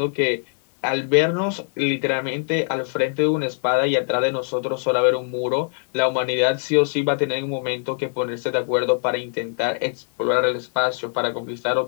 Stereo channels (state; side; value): silent; right; 60 dB below the other